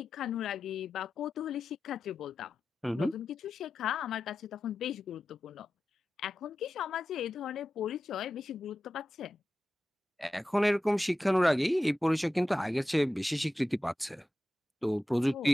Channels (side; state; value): both; normal; correlation 0.92